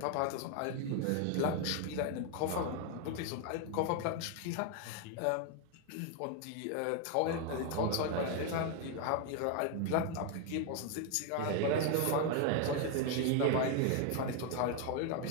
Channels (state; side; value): different; both; correlation 0.01